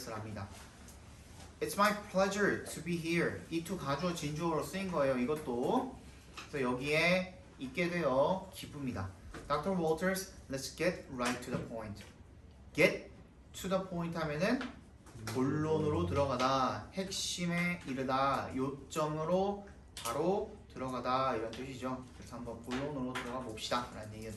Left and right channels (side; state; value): both; identical; correlation 1.00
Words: It's my pleasure to be here. 이 to 가주어 진주어로 쓰인 거예요. 이것도. 그래서 여기에 있게 되어 기쁩니다. Dr. Walters, let's get right to the point. Get to the point 하면은 본론으로 들어가다, 핵심에 이르다, 요점으로 바로 들어가다 이런 뜻이죠. 그래서 한번 본론으로 들어가 봅시다 라는 얘기가